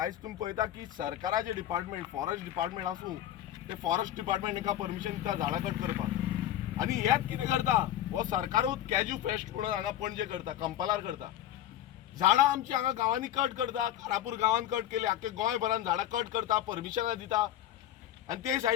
तुमी पळयता की सरकाराचे डिपार्टमेंट, फॉरेस्ट डिपार्टमेंट आसूं, ते फॉरेस्ट डिपार्टमेंट हांकां परमिशन दिता झाडां कट करपाक. आनी हेच कितें करता? हो सरकारूच कॅज्यू फेस्ट म्हणून हांगा पणजे करता, कंपालार करता. झाडां आमची हांगा गांवांनी कट करता. कारापूर गांवांत कट केली, आख्खे गोंयभरान झाडां कट करता, परमिशनां दिता. आनी ते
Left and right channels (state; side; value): quieter; right; 12.2 dB